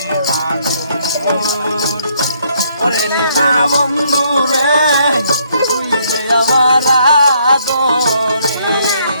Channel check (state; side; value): inverted; both; correlation -0.69